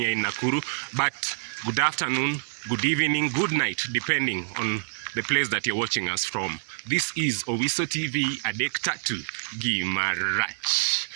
in Nakuru, but good afternoon, good evening, good night, depending on the place that you're watching us from. This is Owiso TV Adektatu Gimarach.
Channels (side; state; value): left; silent; digital silence